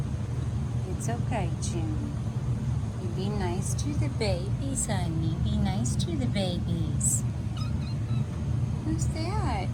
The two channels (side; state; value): both; identical; correlation 1.00